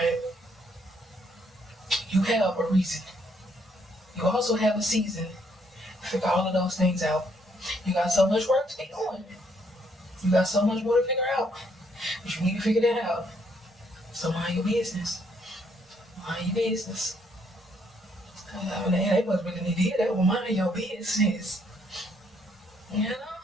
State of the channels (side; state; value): both; normal; correlation 0.70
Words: You have a reason. You also have a season. Figure all of those things out. You got so much work to be doing. You got so much more to figure out. But you need to figure that out. So mind your business. Mind your business. I mean, they must really need to hear that. Well, mind your business. You know?